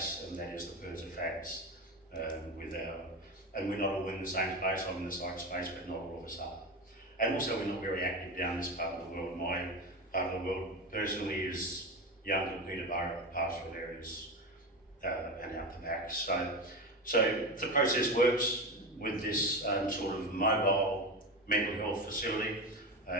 and that is the PIRSA facts and we're not all in the same space. I'm in the psych space, but not all of us are. And also we're not very active down this part of the world. My part of the world personally is Young Peterborough, pastoral areas, and out the back. So the process works with this sort of mobile mental health facility,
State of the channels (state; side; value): normal; both; correlation 0.21